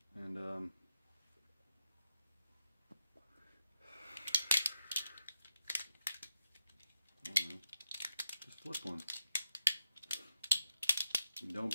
And I don't know, just flip one. Don't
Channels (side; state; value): both; inverted; correlation -0.86